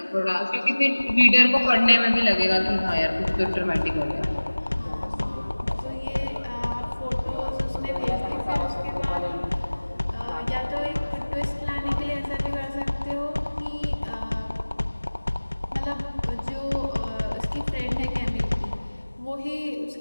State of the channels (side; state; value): both; inverted; correlation -1.00